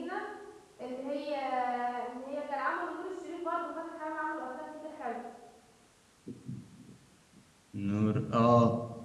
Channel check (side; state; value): both; identical; correlation 1.00